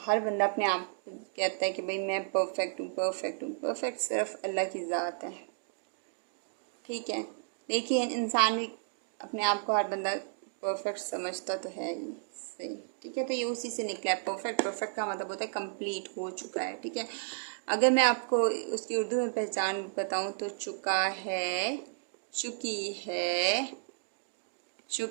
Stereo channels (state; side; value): silent; left; digital silence